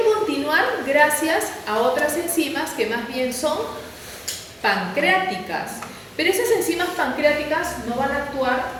continuar gracias a otras enzimas que más bien son pancreáticas. Pero esas enzimas pancreáticas no van a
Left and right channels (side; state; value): both; identical; correlation 1.00